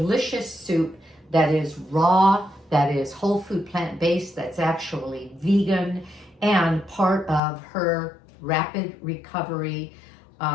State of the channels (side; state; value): right; drops out; at 7.4 s